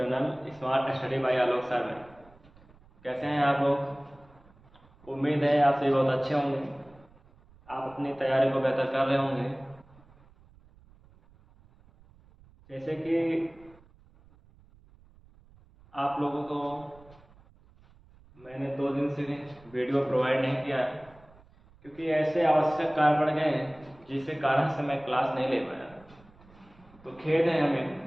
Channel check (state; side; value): noise; right; rumble, 27 dB below the sound